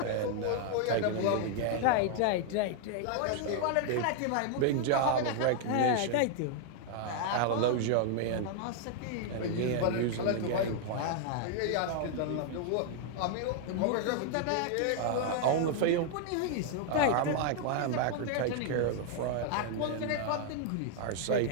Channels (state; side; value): different; both; correlation 0.00